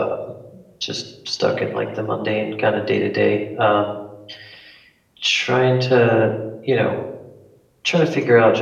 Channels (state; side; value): identical; both; correlation 1.00